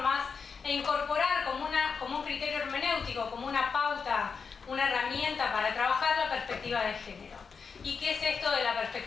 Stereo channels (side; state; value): right; quieter; 5.6 dB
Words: e incorporar como un criterio hermenéutico, como una pauta, una herramienta para trabajar la perspectiva de género. ¿Y qué es esto de la